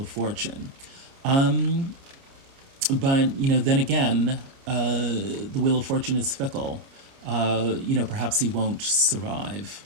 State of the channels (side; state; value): left; late; 29 ms